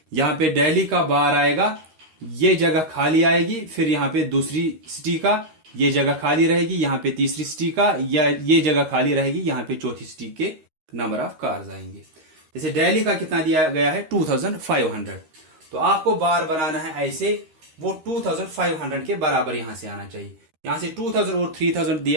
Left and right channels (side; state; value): left; late; 13 ms